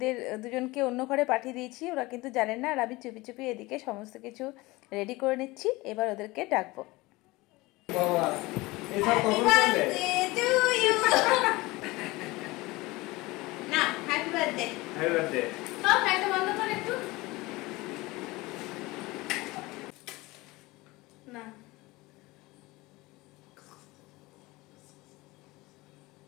দুজনকে অন্য ঘরে পাঠিয়ে দিয়েছি। ওরা কিন্তু জানেন না, আর আমি চুপি চুপি এদিকে সমস্ত কিছু রেডি করে নিচ্ছি। এবার ওদেরকে ডাকবো। না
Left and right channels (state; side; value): quieter; right; 21.4 dB